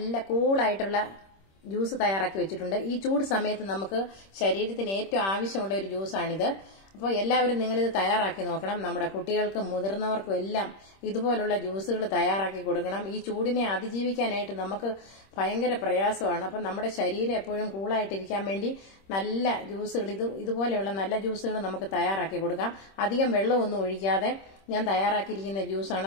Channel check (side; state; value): right; late; 26 ms